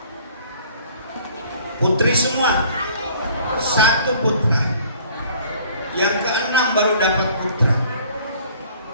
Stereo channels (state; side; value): inverted; both; correlation -0.54